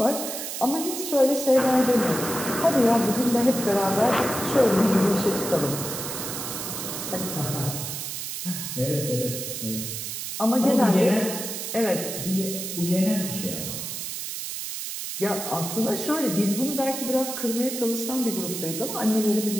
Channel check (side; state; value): right; noise; hiss, 6 dB below the sound